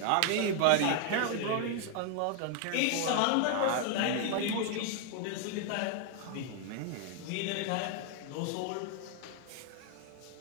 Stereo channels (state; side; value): different; both; correlation 0.00